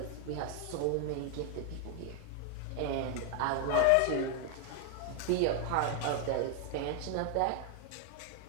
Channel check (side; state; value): both; different; correlation 0.00